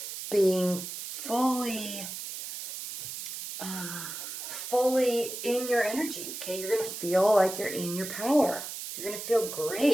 being fully in your energy. Okay, you're going to feel like you're in your power. You're going to feel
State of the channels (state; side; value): noise; right; hiss, 8 dB below the sound